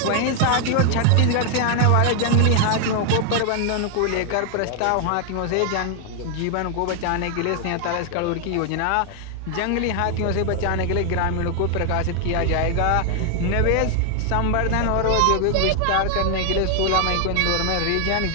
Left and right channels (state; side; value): different; both; correlation 0.00